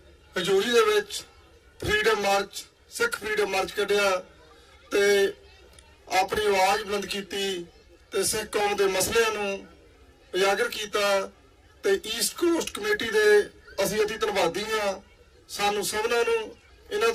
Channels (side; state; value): both; identical; correlation 1.00